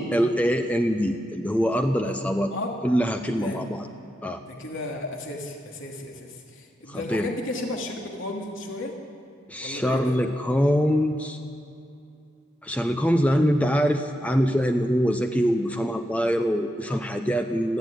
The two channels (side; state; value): both; normal; correlation 0.86